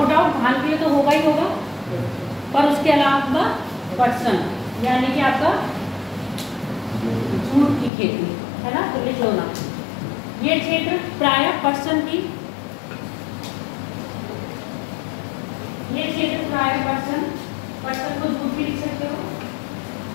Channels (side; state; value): right; drops out; at 7.9 s